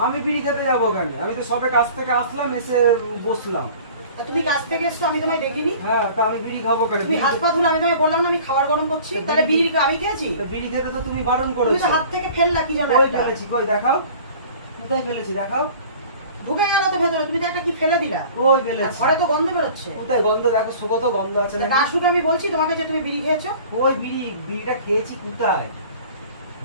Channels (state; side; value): inverted; both; correlation -0.45